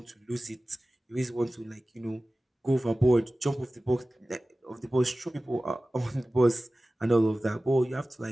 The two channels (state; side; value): normal; both; correlation 0.97